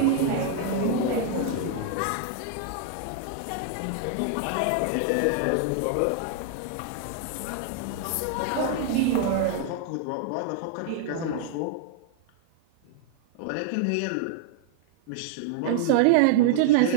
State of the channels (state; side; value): different; both; correlation -0.01